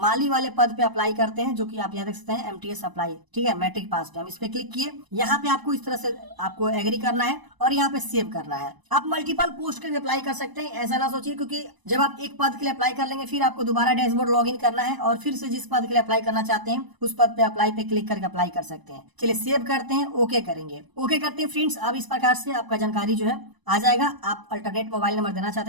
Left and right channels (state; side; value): late; left; 1.0 ms